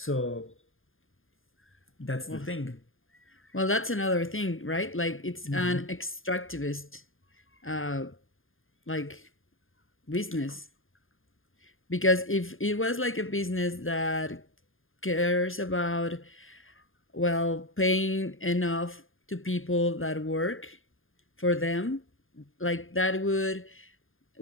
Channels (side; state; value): right; late; 0.59 ms